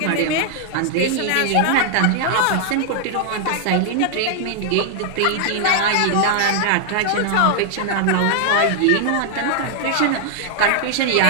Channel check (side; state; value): both; different; correlation 0.00